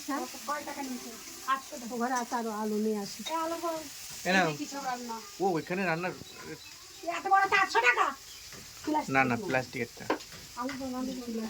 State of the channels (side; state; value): both; identical; correlation 1.00